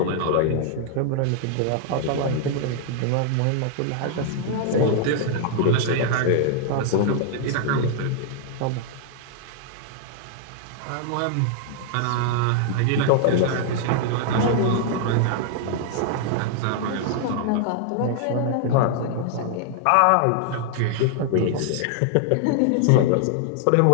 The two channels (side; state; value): both; different; correlation 0.00